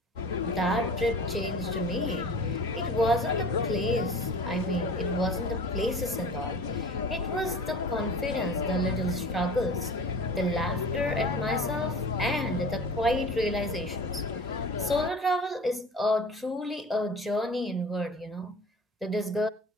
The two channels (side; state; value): both; normal; correlation 0.39